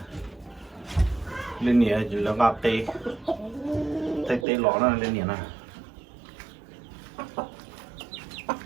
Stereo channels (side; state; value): left; drops out; at 4.5 s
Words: lên nhẹ chỉ là ngáp tê tê tê lỏ nó lên nhẹ nè